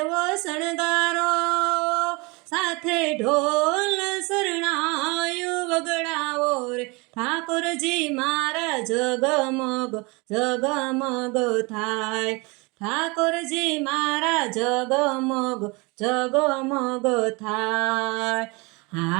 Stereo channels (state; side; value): quieter; left; 27.2 dB